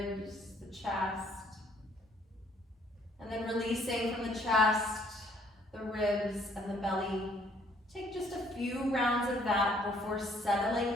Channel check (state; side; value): normal; both; correlation 0.63